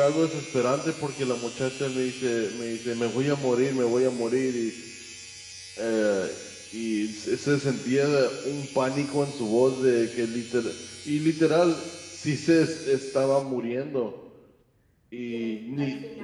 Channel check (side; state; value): both; identical; correlation 1.00